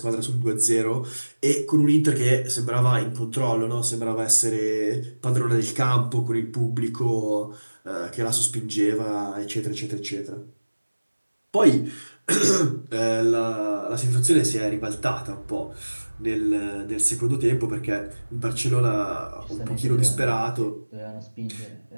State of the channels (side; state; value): both; inverted; correlation -1.00